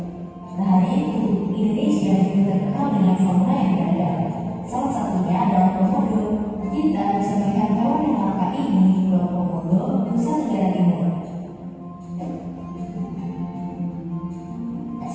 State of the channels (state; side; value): identical; both; correlation 1.00